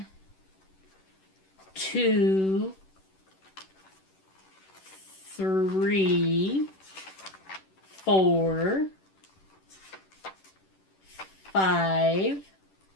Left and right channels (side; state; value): right; late; 10 ms